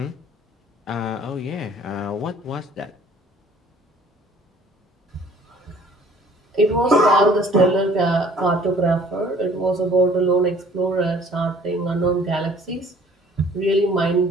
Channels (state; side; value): normal; both; correlation 0.54